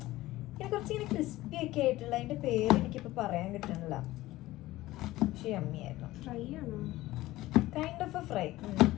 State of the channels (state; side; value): quieter; right; 17.1 dB